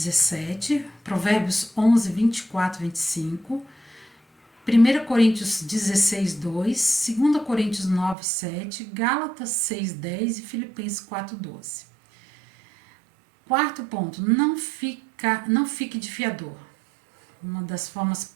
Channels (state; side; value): drops out; left; at 8.2 s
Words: Provérbios 11, 24, 25, 1 Coríntios 16, 2, 2 Coríntios 9, 7, Gálatas 6, 10 e Filipenses 4, 12. Quarto ponto, não fique de fiador. Uma das formas